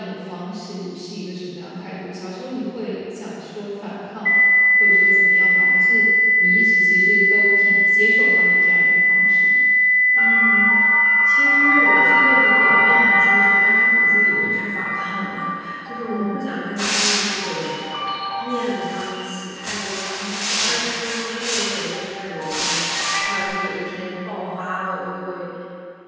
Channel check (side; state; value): both; identical; correlation 1.00